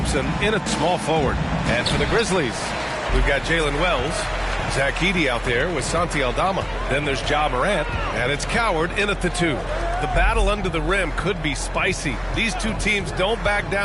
in at small forward. And for the Grizzlies, we've got Jalen Wells. Zach Edey out there with Santi Aldama. Then there's Ja Morant. And it's Coward in at the 2. The battle under the rim could be spicy. These 2 teams don't back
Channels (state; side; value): identical; both; correlation 1.00